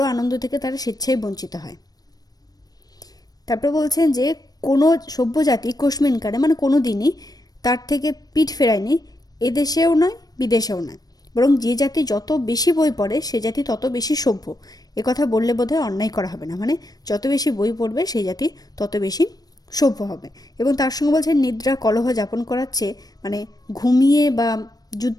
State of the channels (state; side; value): late; right; 0.19 ms